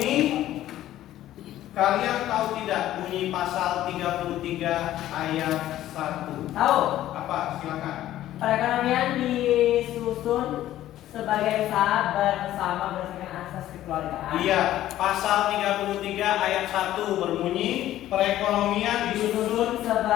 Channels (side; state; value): right; quieter; 13.5 dB